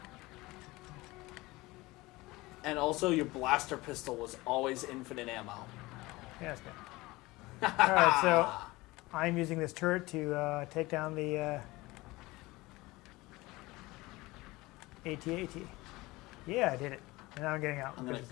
And also, your blaster pistol was always infinite ammo. Yeah, that's good. All right, so I'm using this turret to take down the AT-AT. Yeah, I did it. And now I'm getting out. I'm going because to the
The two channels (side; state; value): right; quieter; 20.9 dB